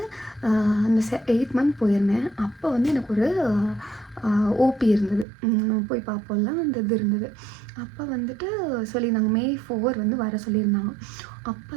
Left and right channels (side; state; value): left; drops out; at 5.2 s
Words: அந்த 8 month போயிருந்தேன். அப்போ வந்து எனக்கு ஒரு ஓபி இருந்தது, போய் பார்ப்போம்ல அந்த இது இருந்தது. அப்போ வந்துட்டு சொல்லியிருந்தாங்க May 4 வந்து வர சொல்லியிருந்தாங்க. அப்போ